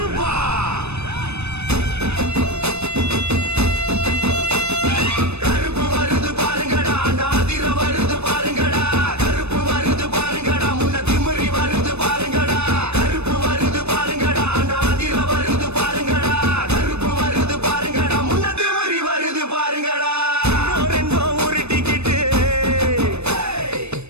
கருப்பு வருது பாருங்கடா நாதிர வருது பாருங்கடா கருப்பு வருது பாருங்கடா முன்ன திமிரி வருது பாருங்கடா கருப்பு வருது பாருங்கடா நாதிர வருது பாருங்கடா கருப்பு வருது பாருங்கடா முன்ன திமிரி வருது பாருங்கடா ரெண்டோ ஒரு டிக்கெட்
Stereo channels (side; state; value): left; late; 0.81 ms